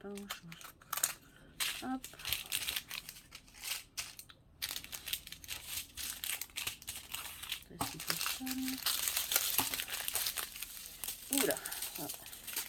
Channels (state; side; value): identical; both; correlation 1.00